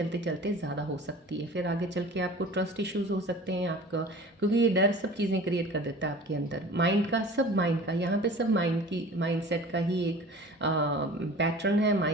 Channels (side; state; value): both; normal; correlation 0.41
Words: चलते ज़्यादा हो सकती है, फिर आगे चल के आपको ट्रस्ट इश्यूज हो सकते हैं आपका, क्योंकि ये डर सब चीज़ें क्रिएट कर देता है आपके अंदर। माइंड का यहाँ पे सब माइंडसेट का ही एक पैटर्न है,